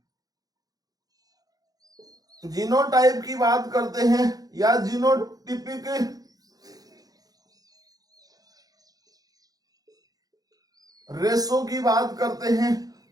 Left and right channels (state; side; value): late; left; 0.18 ms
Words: जीनोटाइप की बात करते हैं या जीनोटिपिक रेशो की बात करते हैं,